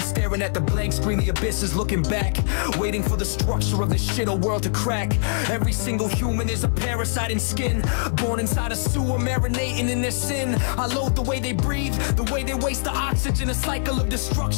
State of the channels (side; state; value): right; silent; digital silence